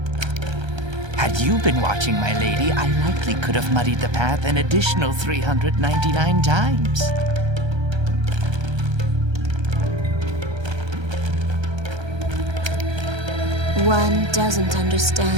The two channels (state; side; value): late; left; 1.3 ms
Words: Had you been watching, my lady, I likely could have muddied the path an additional 399 times. One doesn't